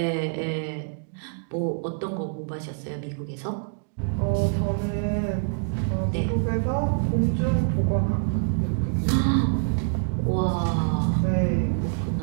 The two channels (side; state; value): left; silent; digital silence